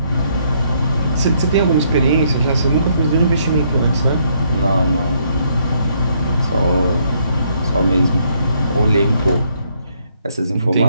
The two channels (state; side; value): inverted; both; correlation -0.71